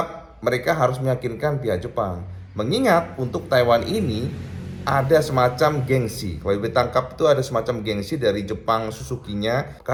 mereka harus meyakinkan pihak Jepang. Mengingat untuk Taiwan ini ada semacam gengsi. Kalau IWB tangkap itu ada semacam gengsi dari Jepang Suzuki-nya,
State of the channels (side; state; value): both; identical; correlation 1.00